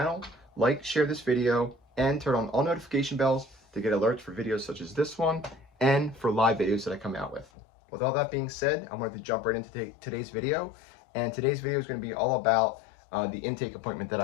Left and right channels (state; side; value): drops out; right; at 7.5 s